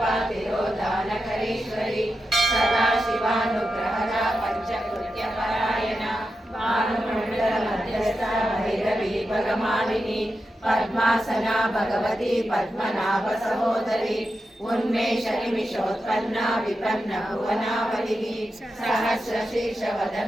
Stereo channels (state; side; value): normal; both; correlation 0.89